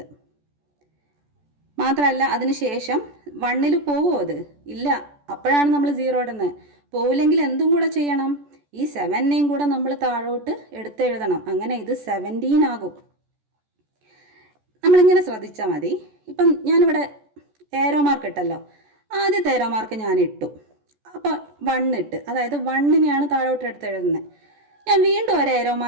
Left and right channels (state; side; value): late; left; 14 ms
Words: മാത്രമല്ല അതിന് ശേഷം 1ൽ പോകുമോ? അത് ഇല്ല. അപ്പോഴാണ് നമ്മൾ 0 ഇടുന്നത്. പോവില്ലെങ്കിൽ എന്തും കൂടെ ചെയ്യണം, ഈ 7നെയും കൂടെ നമ്മൾ താഴോട്ട് എടുത്തെഴുതണം. അങ്ങനെ ഇത് 17 ആകും. നമ്മളിങ്ങനെ ശ്രദ്ധിച്ചാൽ മതി. ഇപ്പം ഞാനിവിടെ ഏരോ മാർക്ക് ഇട്ടല്ലോ. ആദ്യത്തെ ഏരോ മാർക്ക് ഞാൻ ഇട്ടു. അപ്പോൾ 1 ഇട്ട്, അതായത് 1നെയാണ് താഴോട്ട് എടുത്തെഴുതുന്നത്. ഞാൻ വീണ്ടും ഒരു ഏരോ